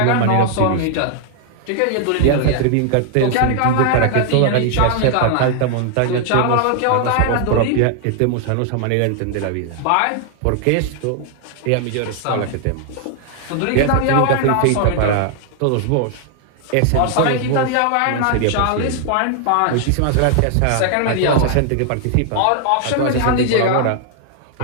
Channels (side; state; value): both; different; correlation 0.00